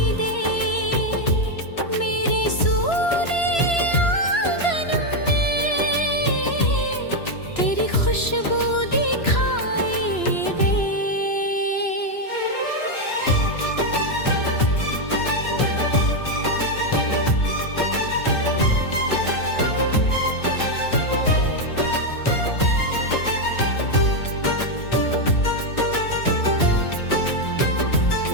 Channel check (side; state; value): right; late; 2.9 ms